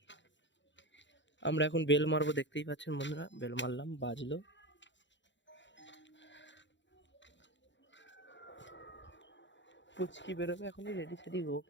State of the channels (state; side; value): late; right; 0.53 ms